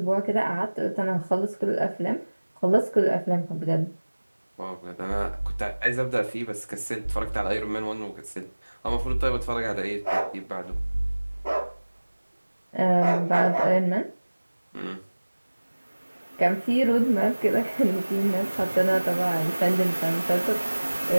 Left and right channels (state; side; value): inverted; both; correlation -1.00